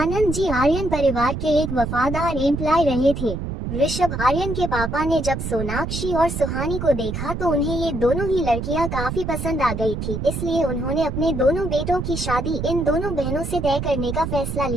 जी आर्यन परिवार के एक वफादार एम्प्लॉय रहे थे। ऋषभ आर्यन के पापा ने जब सोनाक्षी और सुहानी को देखा तो उन्हें ये दोनों ही लड़कियां काफी पसंद आ गई थी, इसलिए उन्होंने अपने दोनों बेटों की शादी इन दोनों बहनों से तय करने का फैसला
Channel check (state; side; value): noise; right; rumble, 4 dB below the sound